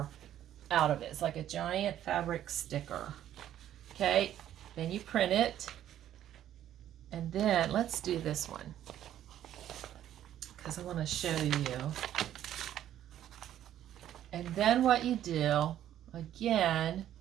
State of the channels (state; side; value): quieter; left; 11.5 dB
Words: out of it. It's like a giant fabric sticker. Okay, then you print it, and then let's do this one because I want to show you. And then what you do, again,